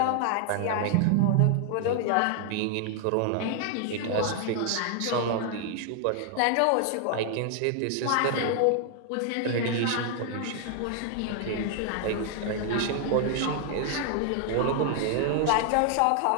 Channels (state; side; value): different; both; correlation 0.00